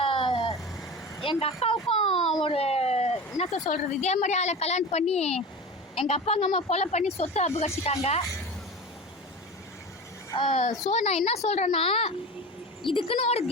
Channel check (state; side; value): normal; both; correlation 0.30